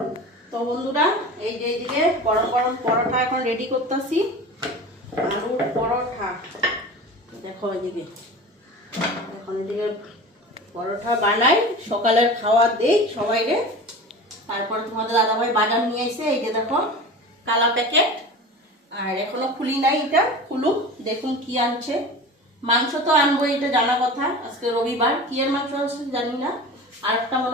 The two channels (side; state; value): both; normal; correlation 0.34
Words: তো বন্ধুরা এই যে এইদিকে গরম গরম পরোটা এখন রেডি করতেছি, আলুর পরোটা। দেখো এইদিকে এখন এদিকে পরোটা বানাই, সকালের খাওয়া দেই সবাইরে। তারপর তোমাদের দাদাভাই বাজার নিয়ে এসে এই যে দেখো কালা প্যাকেট, আর এখনো খুলি নাই, এটা খুলুক দেখুন কি আনছে। মাংস তো আনবো, এটা জানা কথা, আজকে রবিবার। কি এর মাংস আছে জানি না, আর একটা